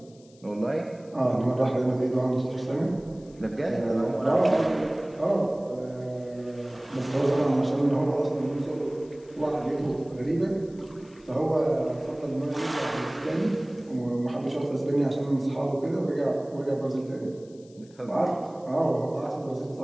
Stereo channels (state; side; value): noise; left; hiss, 29 dB below the sound